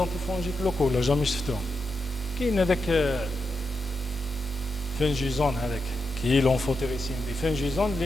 locaux لا jamais شفتوهم. كاين هذاك فنجيزون هذاك كي لونفوتيريسين دي فنجيزون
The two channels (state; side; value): normal; both; correlation 0.86